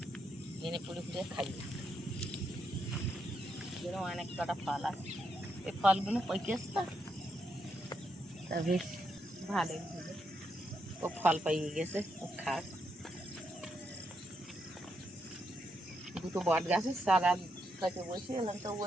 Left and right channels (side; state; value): both; normal; correlation 0.80